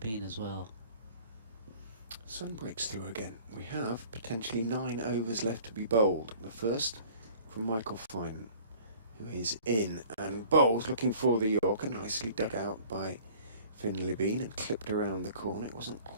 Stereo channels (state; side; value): inverted; both; correlation -0.49